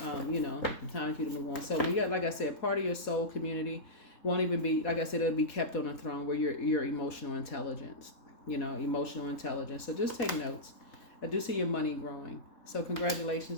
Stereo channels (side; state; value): right; late; 3.7 ms